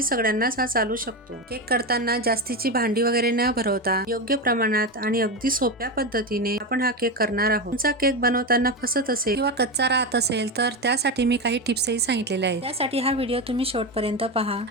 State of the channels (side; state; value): both; normal; correlation 0.16